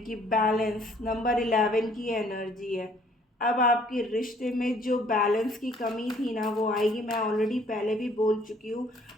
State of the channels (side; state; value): both; normal; correlation 0.60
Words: बैलेंस नंबर 11 की एनर्जी है। अब आपके रिश्ते में जो बैलेंस की कमी थी ना वो आएगी। मैं ऑलरेडी पहले भी बोल चुकी हूँ,